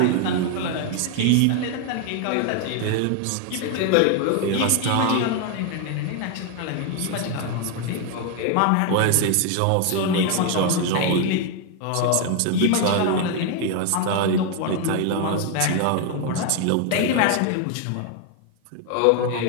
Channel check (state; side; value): different; both; correlation 0.01